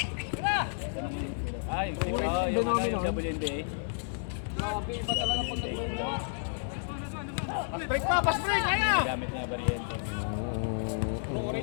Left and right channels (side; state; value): right; silent; 57 dB below the other